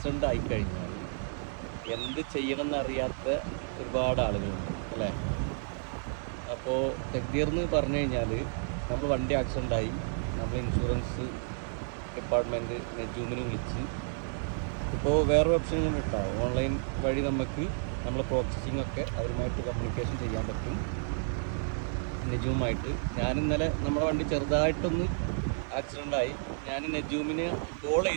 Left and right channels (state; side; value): silent; left; 57 dB below the other